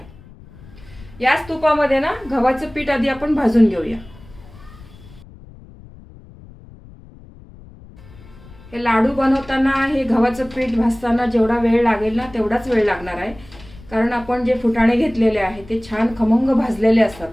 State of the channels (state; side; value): noise; left; rumble, 21 dB below the sound